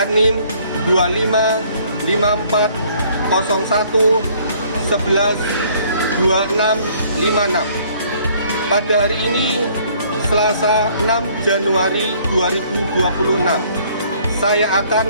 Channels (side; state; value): both; inverted; correlation -0.60